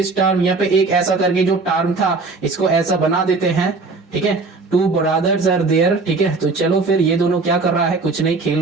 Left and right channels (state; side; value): quieter; left; 3.9 dB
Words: टर्म, यहां पे एक ऐसा करके जो टर्म था इसको ऐसा बना देते हैं, ठीक है, टू ब्रदर्स आर देयर। ठीक है, तो चलो फिर ये दोनों क्या कर रहा है, कुछ नहीं,